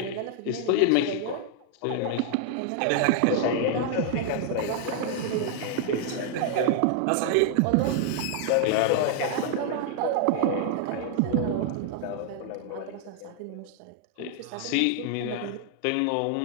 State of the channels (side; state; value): both; different; correlation 0.00